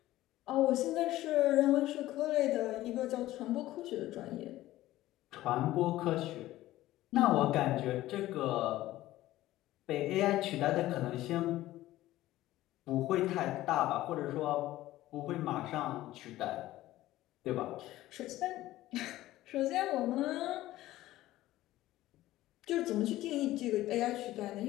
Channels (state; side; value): quieter; right; 15.7 dB